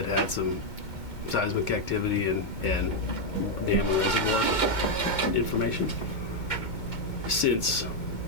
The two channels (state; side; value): late; right; 2.1 ms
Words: had some seismic activity and dam and reservoir information since